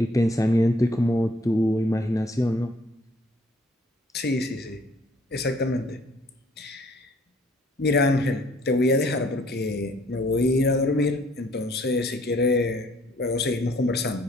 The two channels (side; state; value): both; normal; correlation 0.60